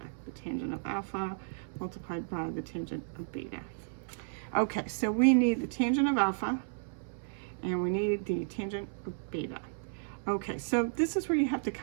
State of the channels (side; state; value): left; silent; 56 dB below the other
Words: the tangent of alpha multiplied by the tangent of beta. Okay, so we need the tangent of alpha and we need the tangent of beta. Okay, so this is where you have to